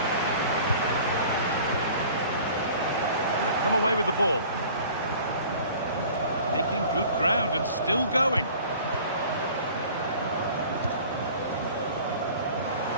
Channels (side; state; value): both; inverted; correlation -0.46